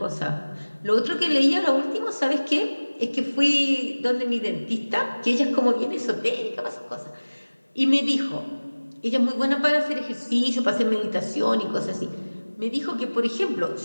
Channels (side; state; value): both; inverted; correlation -1.00